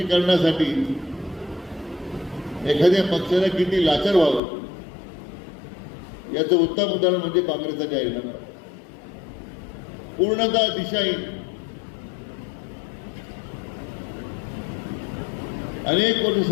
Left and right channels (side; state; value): right; drops out; at 4.4 s